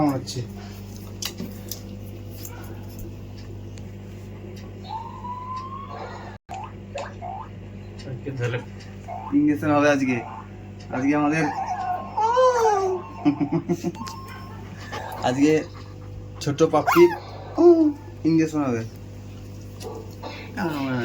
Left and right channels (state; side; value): identical; both; correlation 1.00